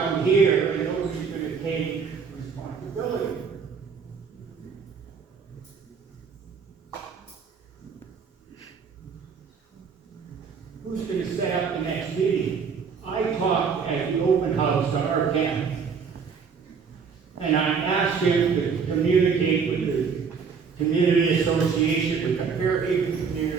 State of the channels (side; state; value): left; quieter; 5.9 dB